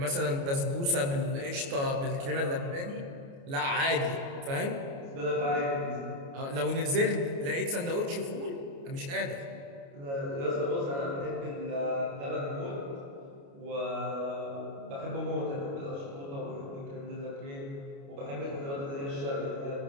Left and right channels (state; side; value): late; left; 29 ms